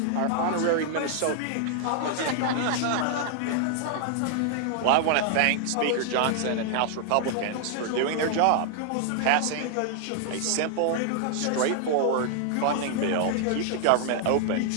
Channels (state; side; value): different; both; correlation 0.00